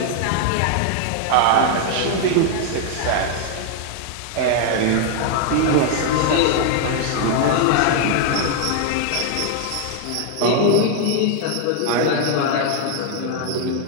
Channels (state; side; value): different; both; correlation 0.00